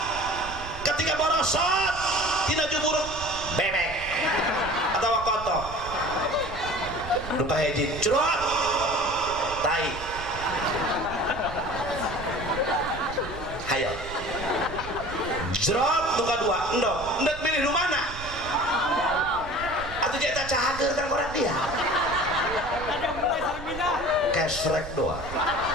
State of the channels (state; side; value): noise; right; rumble, 12 dB below the sound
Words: Ketika borosot tina jumur bebek atawa kotor. Nu kahiji crot tai. Hayo jrot nu kadua endog endog milih nu mana atuh eta cahageun kan orang dia kesrek doa